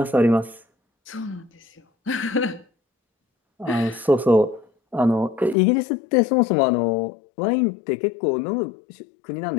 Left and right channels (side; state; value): right; drops out; at 5.6 s